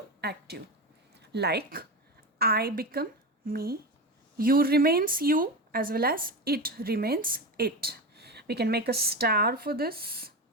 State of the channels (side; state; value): both; normal; correlation 0.21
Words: active. Like I become me, you remains you, as well as it remains it. We can make a star for this